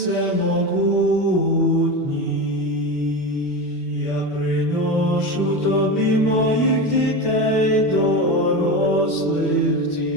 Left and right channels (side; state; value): right; late; 4.9 ms